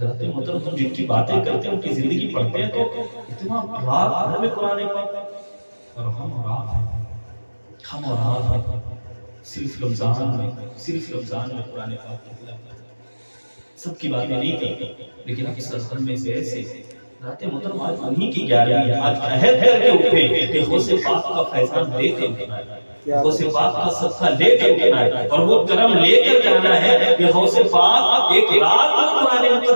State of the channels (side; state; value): both; inverted; correlation -1.00